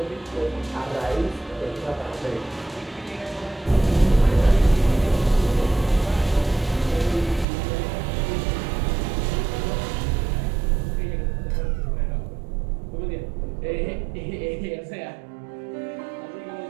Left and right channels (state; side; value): drops out; left; at 7.5 s